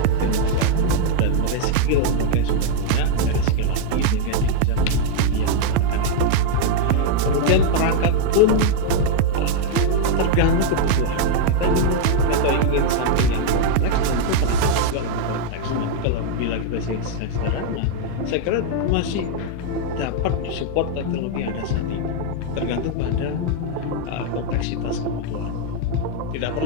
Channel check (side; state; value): both; different; correlation 0.00